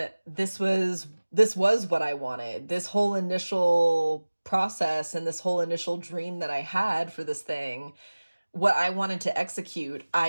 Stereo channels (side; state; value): both; inverted; correlation -1.00